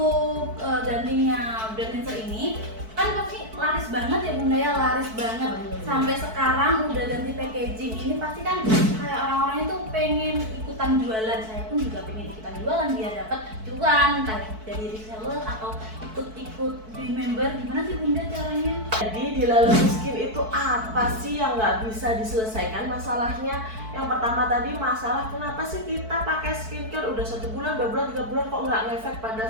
gantinya brand cleanser ini kan pasti laris banget ya Bunda ya, laris banget. Sampai sekarang udah ganti packaging, ini pasti kan kayak orang-orang itu pengen ikutan jualan. Saya pun juga pengen ikutan jualan biar dapat cuan, entah dari reseller atau ikut di member. Gimana sih Bunda caranya? Jadi di Lalotus Skin itu apa sih yang nggak bisa diselesaikan masalahnya? Yang pertama tadi masalah kenapa sih kita pakai skincare udah 1 bulan, 2 bulan, 3 bulan kok nggak ngefek pada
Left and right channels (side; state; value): left; late; 4.6 ms